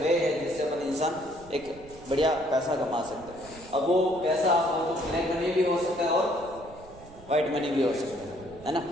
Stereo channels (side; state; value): right; noise; rumble, 20 dB below the sound